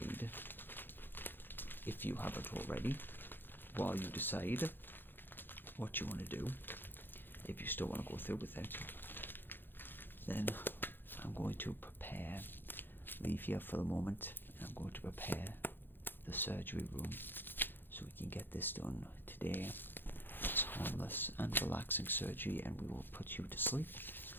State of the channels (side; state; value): right; late; 0.098 ms